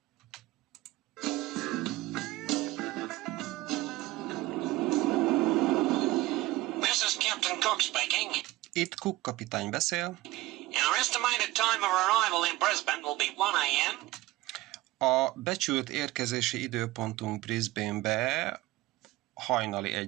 This is Captain Cook speaking. Itt Cook kapitány beszél. Our estimated time of arrival in Brisbane will be 1 a.m. A becsült érkezési időpontunk Brisbane-be hajnali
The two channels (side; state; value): left; quieter; 18.4 dB